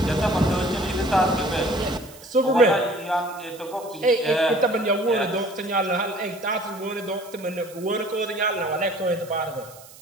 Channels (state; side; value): noise; right; hiss, 20 dB below the sound